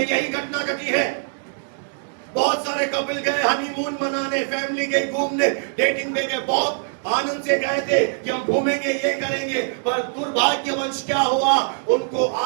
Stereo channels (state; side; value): silent; left; digital silence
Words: यही घटना घटी है। बहुत सारे कपल गए हनीमून मनाने, फैमिली गई घूमने, डेटिंग पे गए, बहुत आनंद से गए थे कि हम घूमेंगे, ये करेंगे। पर दुर्भाग्यवश क्या हुआ, उनको